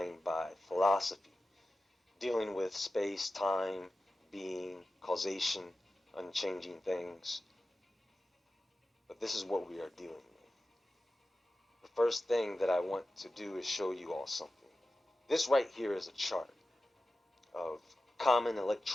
by philosophy, dealing with space, time, being, causation, unchanging things. But this is what we are dealing with. The first thing that I want to do is show you all something. This right here is a chart of common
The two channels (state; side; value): normal; both; correlation 0.94